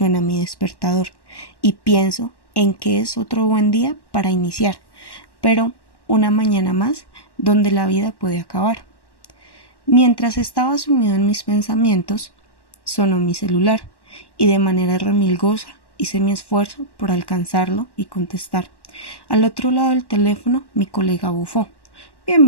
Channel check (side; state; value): right; late; 1.1 ms